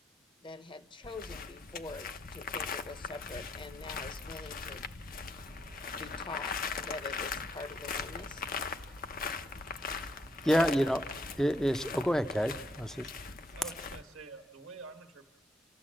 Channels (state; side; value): normal; both; correlation 0.74